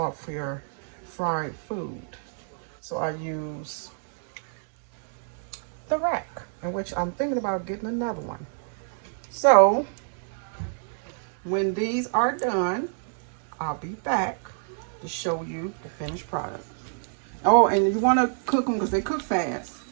your fried food. So I use the rack, in which I'm thinking about getting another one. So when these are done, I'll be back to show you the finished product. Oh, and you want to cook them because they cook fast.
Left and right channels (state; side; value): silent; left; digital silence